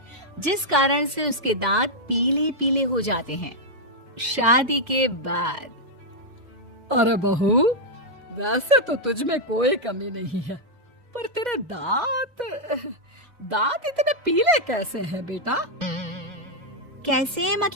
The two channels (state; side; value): late; left; 2.0 ms